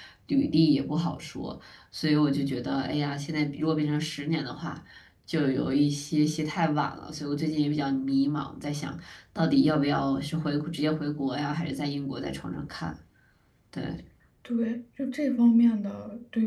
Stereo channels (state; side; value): identical; both; correlation 1.00